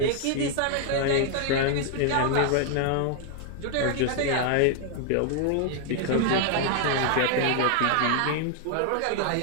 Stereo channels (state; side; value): different; both; correlation 0.00